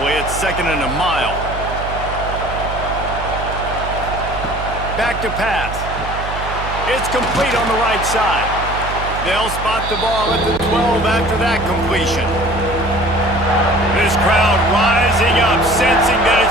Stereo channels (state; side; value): noise; right; hum, 8 dB below the sound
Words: It's 2nd and a mile. Back to pass. It's complete on the right side. They'll spot the ball at the 12 after that completion. This crowd rising up, sensing that